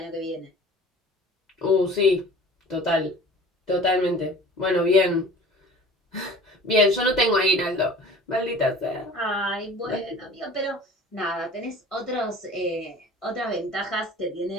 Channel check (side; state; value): both; normal; correlation 0.44